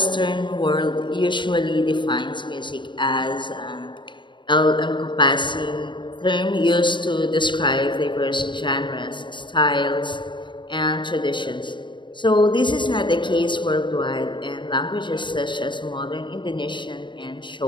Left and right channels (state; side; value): late; right; 0.23 ms